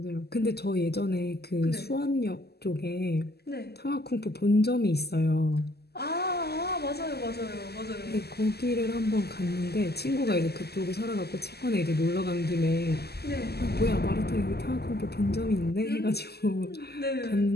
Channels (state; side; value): late; right; 0.46 ms